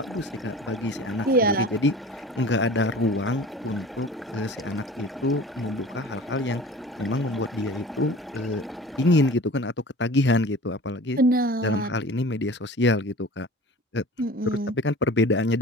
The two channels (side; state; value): both; normal; correlation 0.40